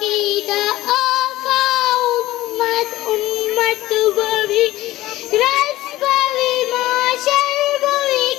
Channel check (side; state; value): right; quieter; 16.4 dB